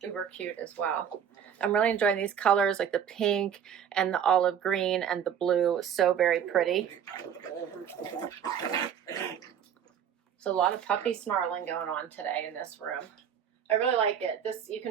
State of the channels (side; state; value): left; quieter; 8.5 dB